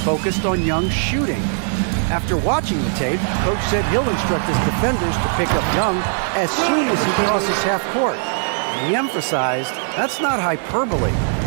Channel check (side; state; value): left; silent; digital silence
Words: on Young's shooting. After watching the tape, coach said he'll instruct his defenders to pick up Young as soon as he crosses half court. And he emphasized that's not hyperbole.